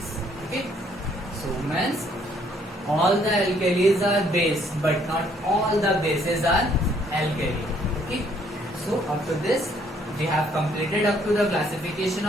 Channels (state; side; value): normal; both; correlation 0.65